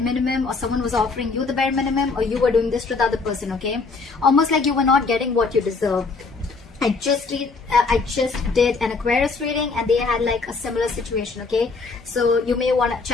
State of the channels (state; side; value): quieter; right; 4.3 dB